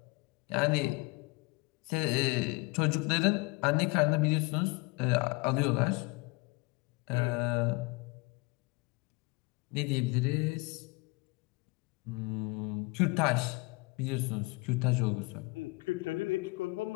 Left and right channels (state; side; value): quieter; right; 26.6 dB